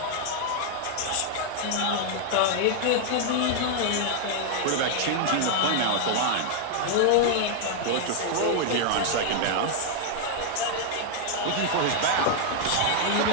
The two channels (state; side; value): different; both; correlation 0.00